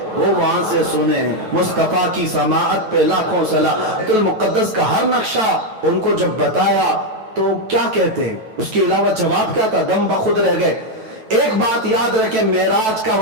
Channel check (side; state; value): left; late; 9.2 ms